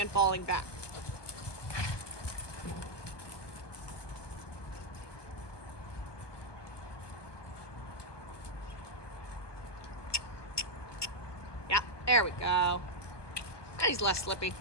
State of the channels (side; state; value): right; late; 1.2 ms